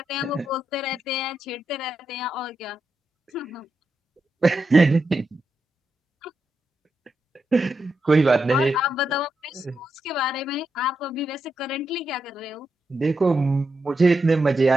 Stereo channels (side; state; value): both; normal; correlation 0.85